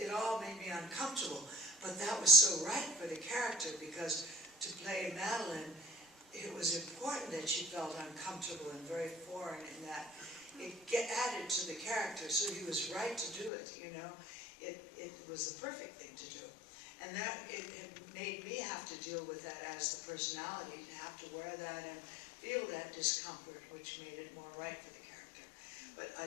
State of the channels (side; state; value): right; drops out; at 13.5 s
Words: all made me uncomfortable. But that was so right for the character, because to play Madeline, it was important that she felt uncomfortable and very foreign in that. It added to the character, so he was right to do it, you know. It was the perfect thing to do. And that, it made me have to deal with that as the personality, to have to wear that and feel that discomfort, which made it more right for the character. But I